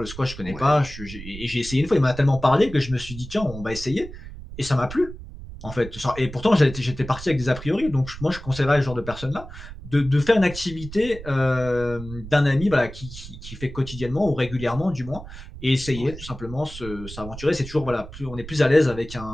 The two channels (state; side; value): noise; right; rumble, 13 dB below the sound